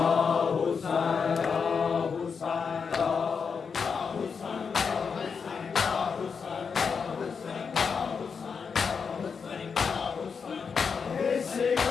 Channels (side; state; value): right; quieter; 5.8 dB